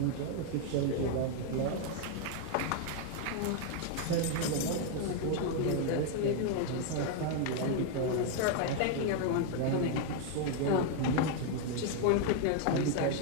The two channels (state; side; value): different; both; correlation 0.00